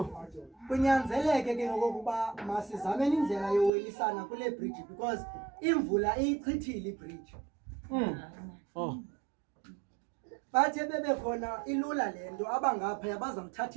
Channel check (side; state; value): left; drops out; at 3.7 s